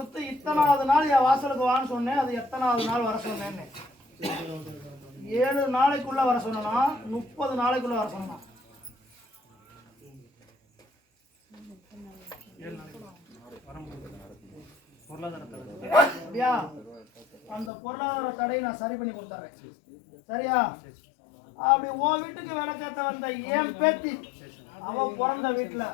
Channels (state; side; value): drops out; right; at 17.7 s